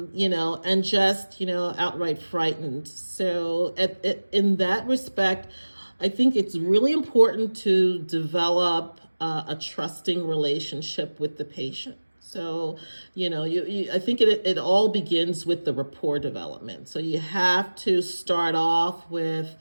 just, outright frightened. So in that respect, I think it's really important to develop a trusting relationship with the patient. So, I think it all begins with the rapport development. So you have to start off with,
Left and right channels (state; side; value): inverted; both; correlation -1.00